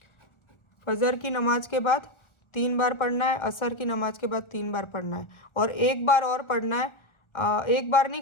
फजर की नमाज के बाद 3 बार पढ़ना है, असर की नमाज के बाद 3 बार पढ़ना है, और एक बार और पढ़ना है। एक बार नहीं,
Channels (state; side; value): late; right; 1.4 ms